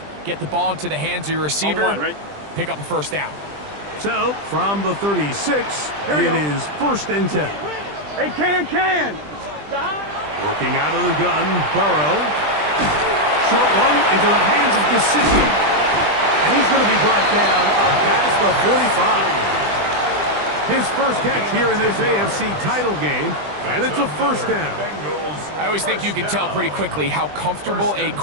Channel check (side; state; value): left; late; 20 ms